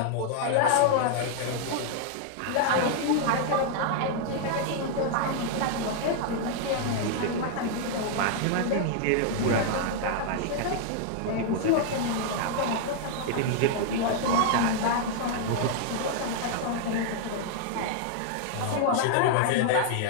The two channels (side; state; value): both; different; correlation 0.00